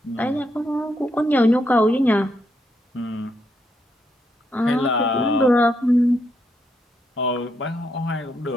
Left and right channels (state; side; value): normal; both; correlation 0.78